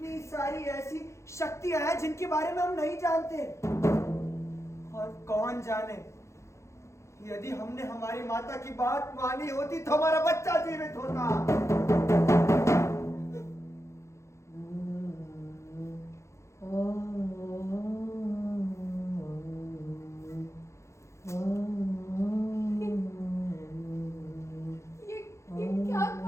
सारी ऐसी शक्तियां हैं जिनके बारे में हम नहीं जानते, और कौन जाने, यदि हमने हमारी माता की बात मानी होती तो हमारा बच्चा जीवित होता। ये क्या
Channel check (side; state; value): right; late; 0.14 ms